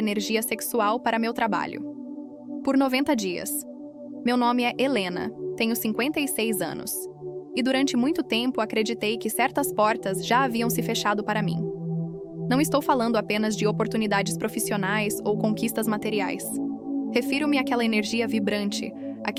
sexual para meu trabalho. Por 90 dias. Meu nome é Helena, tenho 56 anos. E durante muito tempo acreditei que certas portas já haviam se fechado para mim. Não estou falando apenas de oportunidades profissionais ou conquistas materiais. Refiro-me àquela energia vibrante,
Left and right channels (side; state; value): both; identical; correlation 1.00